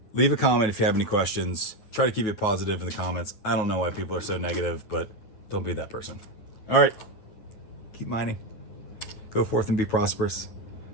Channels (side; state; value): right; late; 9.3 ms